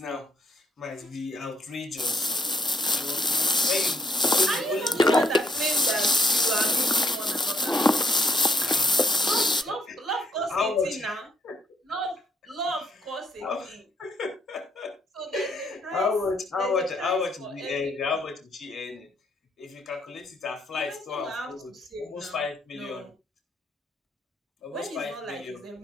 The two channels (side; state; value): both; normal; correlation 0.70